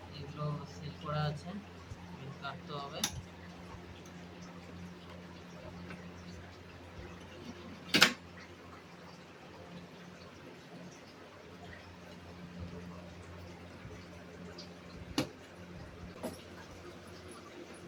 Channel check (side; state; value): both; identical; correlation 1.00